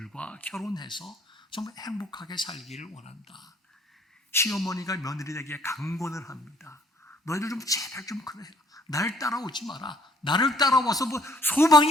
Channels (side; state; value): both; normal; correlation 0.62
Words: 결혼해서 정말 행복하게 살기를 원한다. 시어머니가 며느리에게 강권을 합니다. 너희들 좀 제발 좀 그래. 날 따라오지 마라. 나를 따라와서 뭐